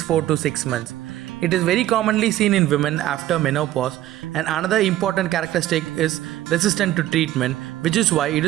4 to 6 months. It is very commonly seen in women after menopause, and another important characteristic is resistant to treatment, which is why it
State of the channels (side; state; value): left; quieter; 14.1 dB